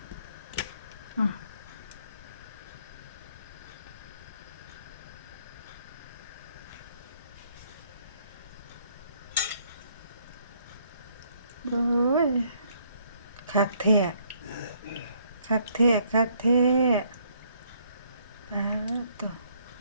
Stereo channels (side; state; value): both; inverted; correlation -0.66